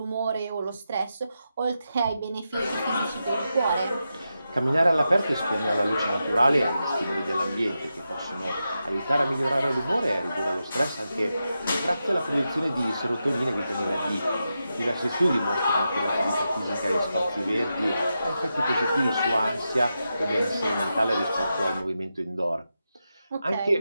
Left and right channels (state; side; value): inverted; both; correlation -0.88